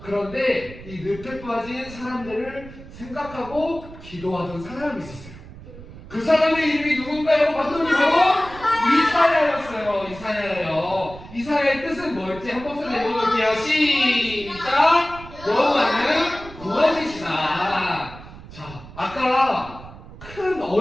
그런데 이 늪에 빠진 사람들을 생각하고 기도하던 사람이 있었어요. 그 사람의 이름이 누군가요? 봤더니 바로 이사야였어요. 이사야요. 이사야의 뜻은 뭐였지? 한 번씩 읽어볼게요. 시작! 여호와는 구원이시다. 자, 아까 큰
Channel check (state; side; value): noise; right; rumble, 16 dB below the sound